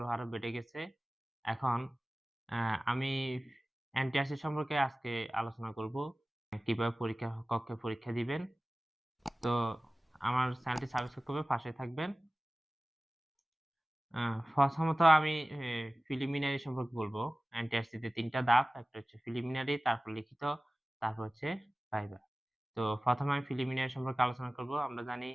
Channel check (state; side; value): normal; both; correlation 0.97